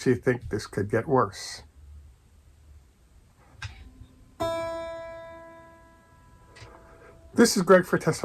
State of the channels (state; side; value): identical; both; correlation 1.00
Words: think this could get worse. This is Greg for